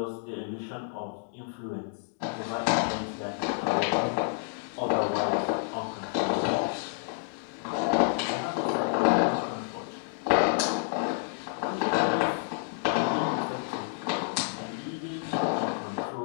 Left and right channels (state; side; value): silent; right; digital silence